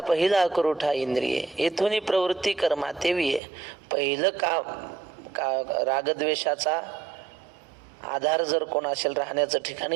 करुठा इंद्रिये, येथून प्रवृत्ती कर्मा तेवी आहे. पहिलं का रागद्वेषाचा आधार जर कोण असेल राहण्याचं ठिकाण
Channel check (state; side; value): drops out; left; at 3.4 s